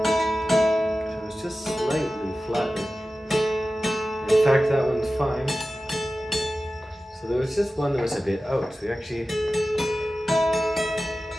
it's just slightly flattened. In fact, that one's fine. So there was just one that was a bit out. So we actually,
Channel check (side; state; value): both; normal; correlation 0.95